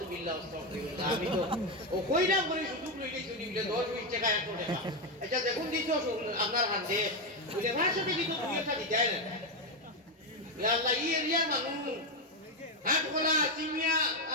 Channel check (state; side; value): normal; both; correlation 0.08